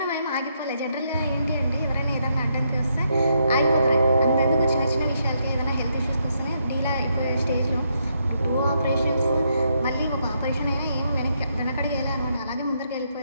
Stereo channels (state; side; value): inverted; both; correlation -0.77